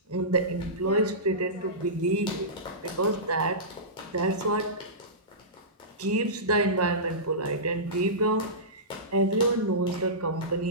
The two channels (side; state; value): both; normal; correlation -0.19